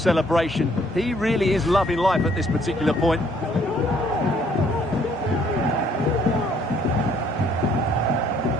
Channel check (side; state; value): both; normal; correlation 0.64